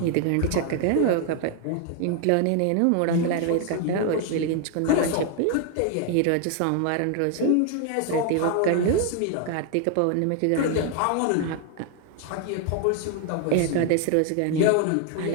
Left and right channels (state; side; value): different; both; correlation 0.00